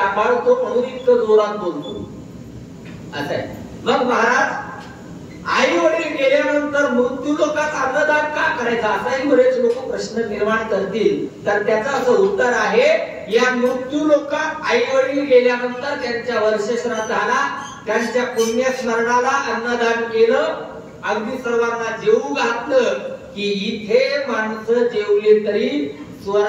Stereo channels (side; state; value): both; identical; correlation 1.00